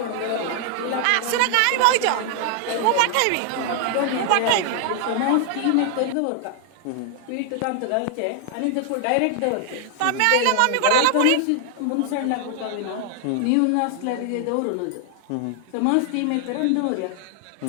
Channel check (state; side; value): different; both; correlation 0.00